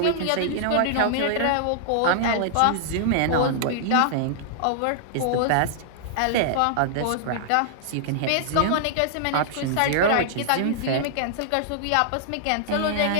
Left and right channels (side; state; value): both; different; correlation -0.01